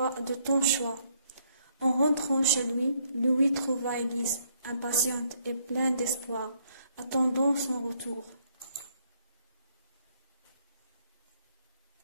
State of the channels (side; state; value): both; inverted; correlation -0.70